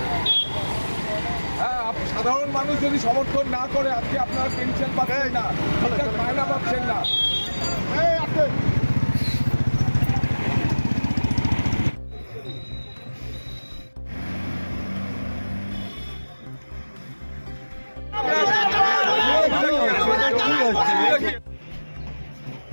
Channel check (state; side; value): inverted; both; correlation -1.00